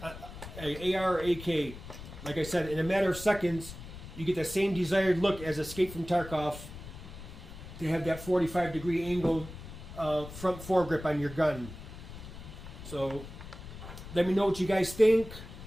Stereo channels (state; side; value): noise; left; rumble, 13 dB below the sound